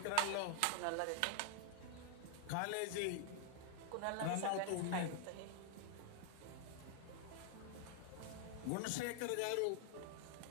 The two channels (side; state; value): both; different; correlation 0.00